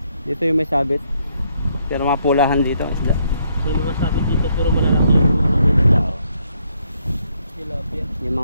Dito yung may sabit. Pero mga pulahan dito ang isda. May mga sabit dito pero malalaki yung mga nila. Tilapia. Yung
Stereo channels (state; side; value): inverted; both; correlation -0.72